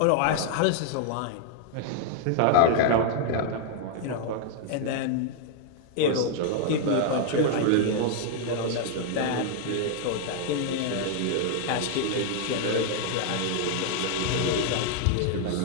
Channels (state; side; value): different; both; correlation 0.00